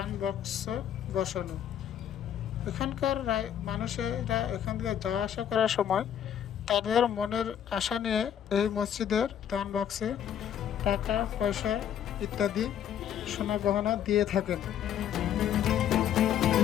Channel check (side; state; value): right; quieter; 9.6 dB